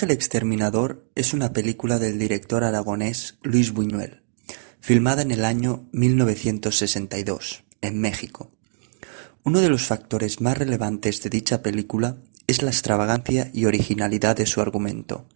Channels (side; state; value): left; silent; digital silence